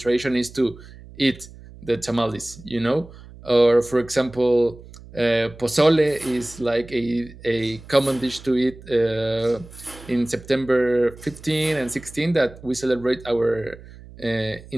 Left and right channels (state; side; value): noise; right; hum, 19 dB below the sound